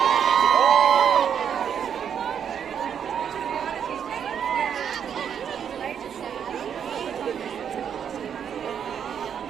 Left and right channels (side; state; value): left; quieter; 8.2 dB